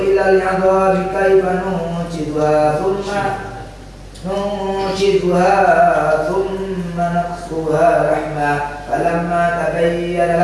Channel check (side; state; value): both; identical; correlation 1.00